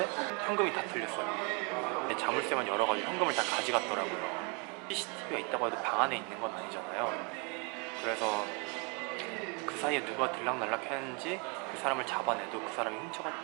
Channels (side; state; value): left; quieter; 33.3 dB